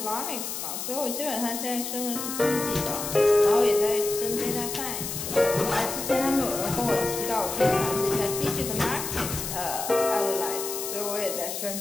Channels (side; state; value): left; noise; hiss, 5 dB below the sound